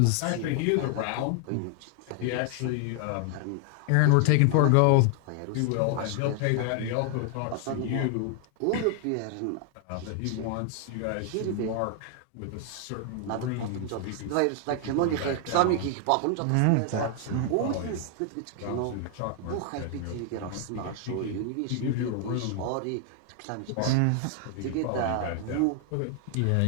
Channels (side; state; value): both; different; correlation 0.00